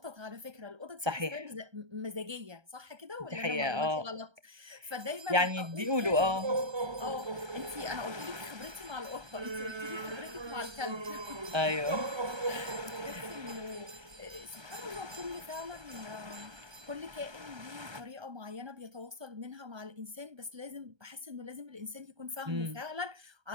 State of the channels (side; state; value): left; late; 1.3 ms